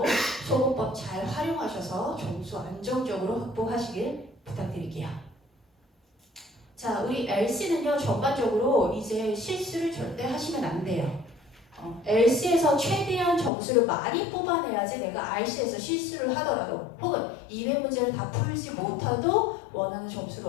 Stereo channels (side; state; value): right; drops out; at 13.5 s